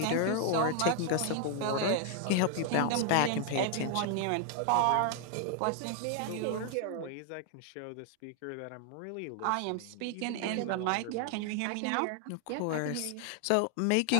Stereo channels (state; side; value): different; both; correlation 0.00